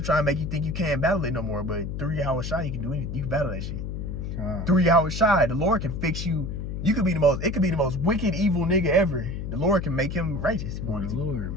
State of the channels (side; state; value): left; noise; hum, 5 dB below the sound